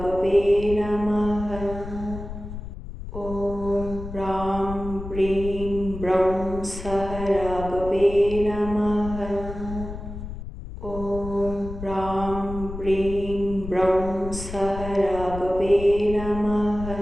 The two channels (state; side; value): noise; left; rumble, 10 dB below the sound